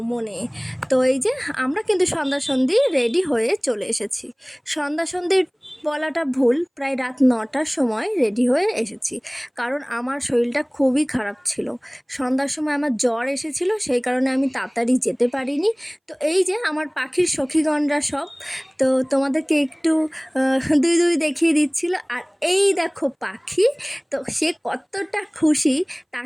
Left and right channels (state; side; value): identical; both; correlation 1.00